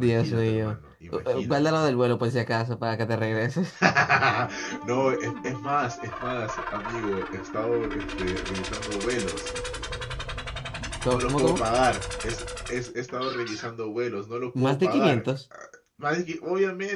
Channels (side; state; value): both; identical; correlation 1.00